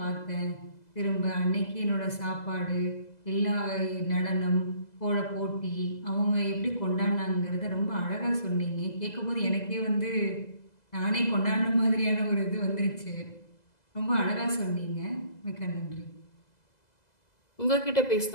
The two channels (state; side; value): late; right; 2.0 ms